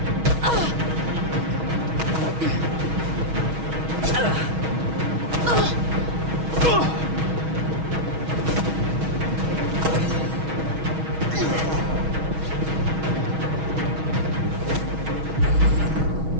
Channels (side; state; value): left; late; 6.3 ms